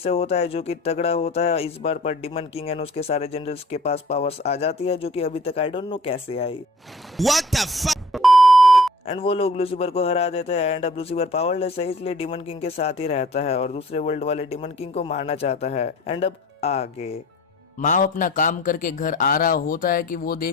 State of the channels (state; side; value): normal; both; correlation 0.50